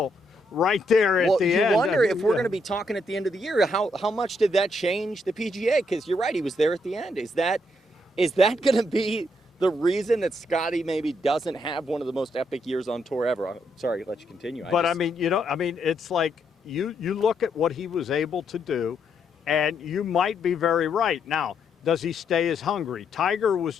right there at the end. You wonder if we're going to be talking at the end of the year, how much did that change the PGA? Because you're right, he was there at the end. Is that going to be the reason that Scottie maybe doesn't have one of the most epic years on tour ever? I'm sorry, let you continue. But it's like you look at what he was able to do, and you might be very right. Now, does he stay as hungry? Tiger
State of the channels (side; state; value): both; normal; correlation 0.76